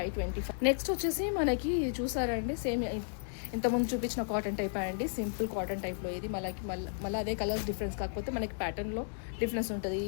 నెక్స్ట్ వచ్చేసి మనకి చూసారండి సేమ్ ఇంతకుముందు చూపించిన కాటన్ టైప్ అండి, సింపుల్ కాటన్ టైప్లో. ఇది మళ్ళీ అదే కలర్స్ డిఫరెన్స్, కాకపోతే మనకి ప్యాటర్న్లో డిఫరెన్స్ ఉంటుంది.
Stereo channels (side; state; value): right; silent; digital silence